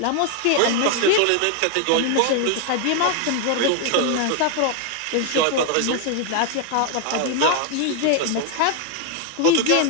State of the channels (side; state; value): both; different; correlation 0.01